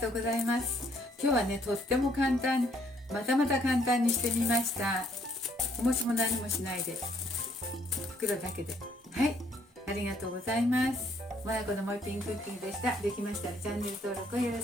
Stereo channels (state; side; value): normal; both; correlation 0.67